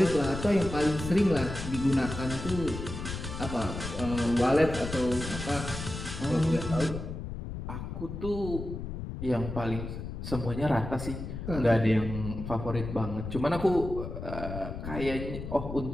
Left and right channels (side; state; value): left; noise; rumble, 7 dB below the sound